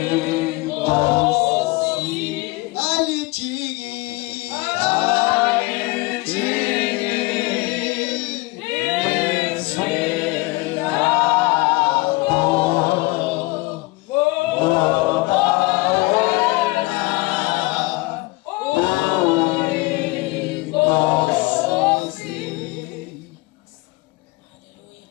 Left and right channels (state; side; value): quieter; right; 23.1 dB